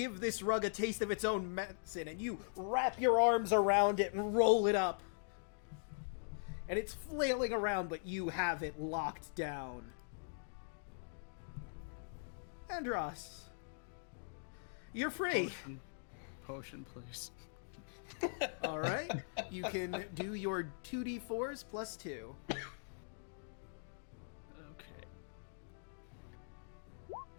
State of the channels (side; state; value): right; silent; digital silence